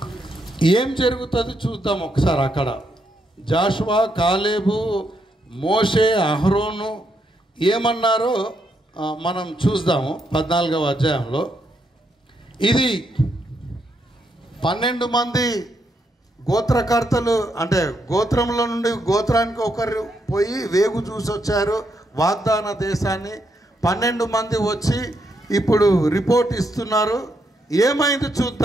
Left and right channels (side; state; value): both; normal; correlation 0.78